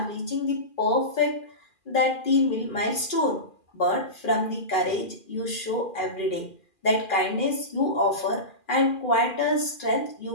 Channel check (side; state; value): right; late; 2.4 ms